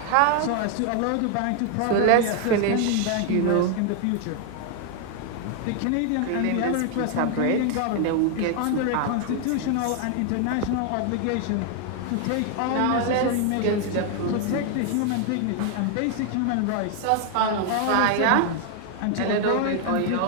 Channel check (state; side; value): different; both; correlation 0.00